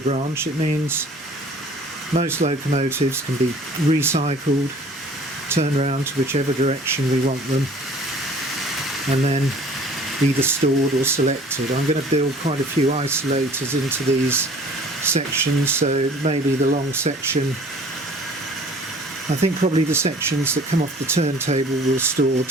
it means most locomotives can be recycled, turned around to whichever direction we want them, and then either stored or selected. I'm going to build quite a few isolators into these sections, so maybe the long section, I think probably the sections that come off the turntable will store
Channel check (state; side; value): normal; both; correlation 0.50